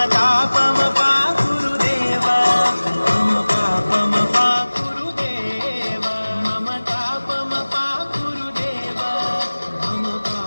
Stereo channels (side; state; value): both; inverted; correlation -1.00